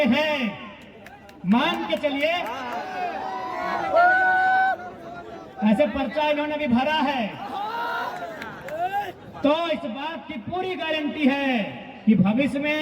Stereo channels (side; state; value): both; identical; correlation 1.00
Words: हैं, मान के चलिए, ऐसे पर्चा इन्होंने भी भरा है, तो इस बात की पूरी गारंटी है कि भविष्य